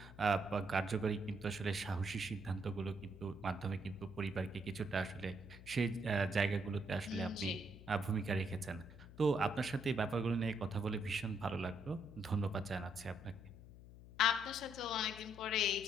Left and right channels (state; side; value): noise; left; hum, 17 dB below the sound